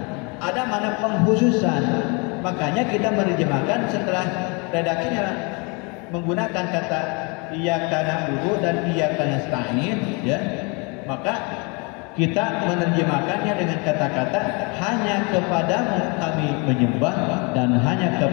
Ada makna pengkhususan. Makanya kita menerjemahkan setelah redaksinya menggunakan kata iyyaka na'budu dan iyyaka nasta'in, ya. Maka kita menerjemahkannya dengan kata-kata hanya kepadamu kami menyembah dan hanya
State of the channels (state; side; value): quieter; right; 31.3 dB